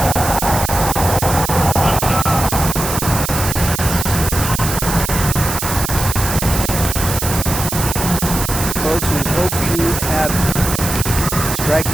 Folks, we hope you have Strike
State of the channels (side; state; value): right; noise; hiss, 4 dB below the sound